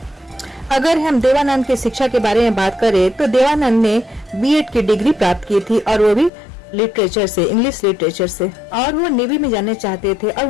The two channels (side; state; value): right; drops out; at 6.3 s